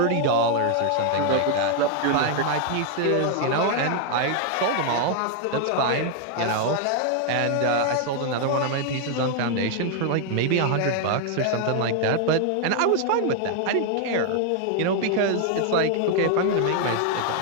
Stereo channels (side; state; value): both; different; correlation 0.00